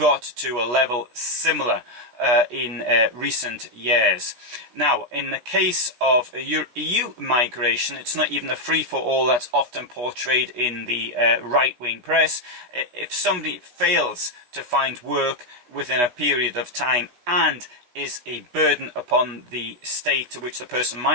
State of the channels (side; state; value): left; late; 16 ms